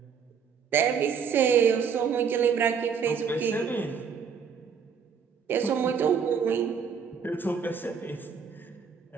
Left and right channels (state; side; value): quieter; left; 6.7 dB